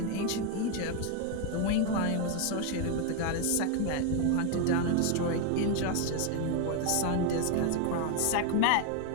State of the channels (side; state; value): both; different; correlation 0.01